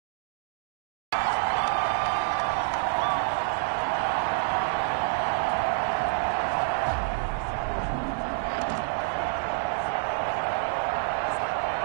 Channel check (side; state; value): left; silent; digital silence